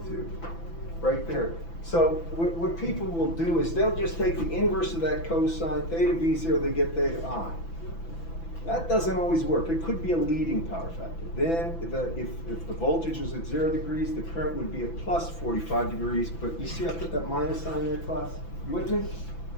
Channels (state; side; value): late; right; 6.0 ms